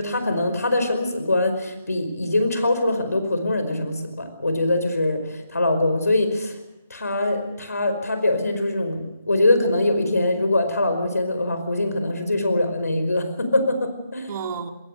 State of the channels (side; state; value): both; inverted; correlation -0.81